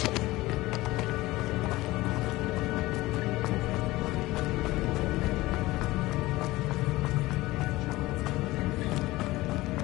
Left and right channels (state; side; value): quieter; right; 18.9 dB